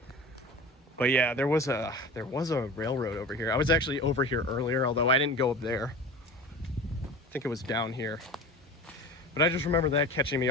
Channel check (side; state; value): both; normal; correlation 0.35